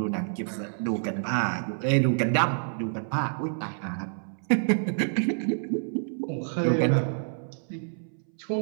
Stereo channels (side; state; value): left; silent; 59 dB below the other